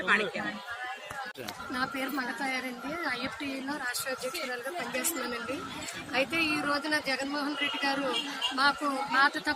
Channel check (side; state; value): both; identical; correlation 1.00